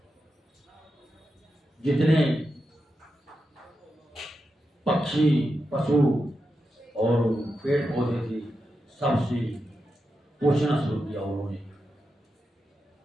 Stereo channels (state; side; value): normal; both; correlation 0.88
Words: जितने पक्षी पशु और पेड़ पौधे थे सबसे पोषण शुरू किया उन्होंने।